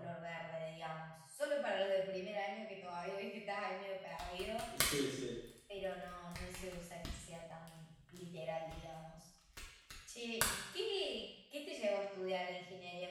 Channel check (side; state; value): both; identical; correlation 1.00